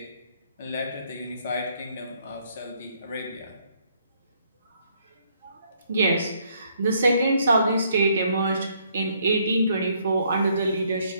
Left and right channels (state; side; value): inverted; both; correlation -0.69